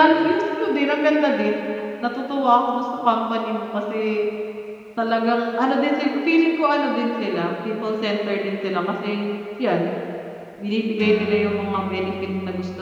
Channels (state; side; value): identical; both; correlation 1.00